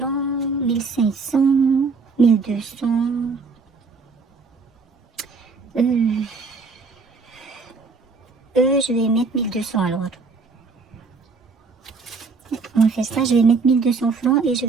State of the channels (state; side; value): quieter; left; 4.4 dB